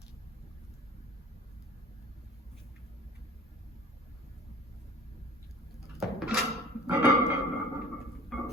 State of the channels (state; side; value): normal; both; correlation 0.45